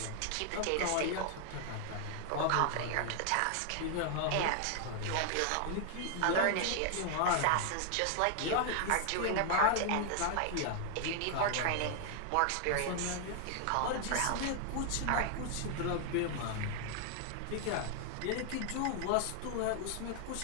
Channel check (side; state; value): both; different; correlation 0.00